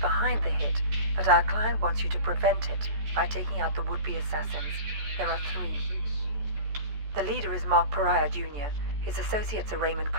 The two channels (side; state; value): left; late; 14 ms